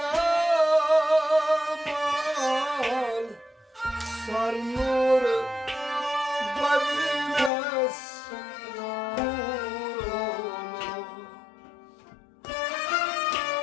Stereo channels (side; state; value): right; drops out; at 7.5 s